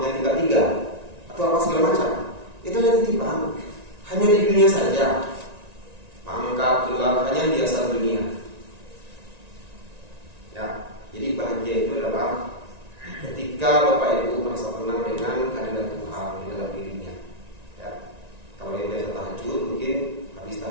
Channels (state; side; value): late; left; 1.9 ms